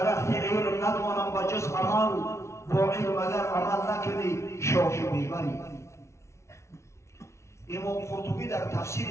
علم ندانم به جز عمل با علم اگر عمل نکنی شاخ میبری امام قرطبی در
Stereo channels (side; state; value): right; late; 0.13 ms